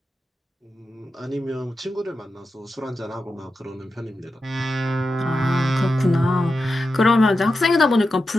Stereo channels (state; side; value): normal; both; correlation 0.90